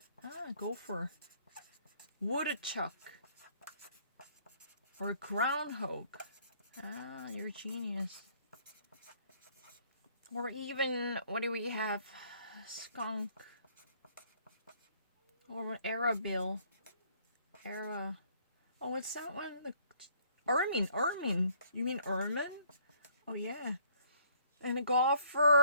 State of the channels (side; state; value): both; inverted; correlation -0.62